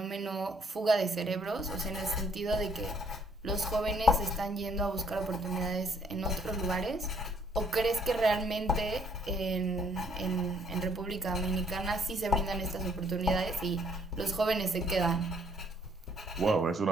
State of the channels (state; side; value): normal; both; correlation 0.65